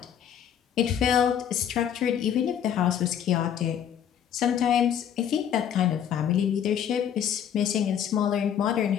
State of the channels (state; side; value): quieter; right; 9.2 dB